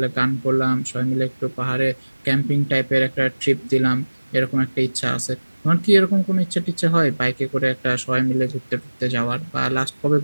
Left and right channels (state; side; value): inverted; both; correlation -1.00